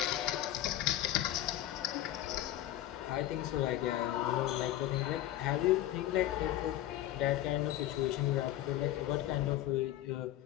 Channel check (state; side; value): quieter; right; 13.5 dB